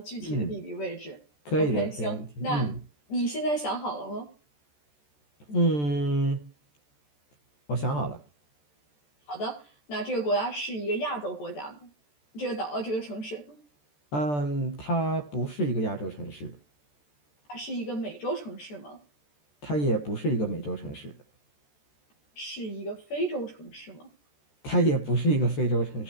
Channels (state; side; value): late; right; 14 ms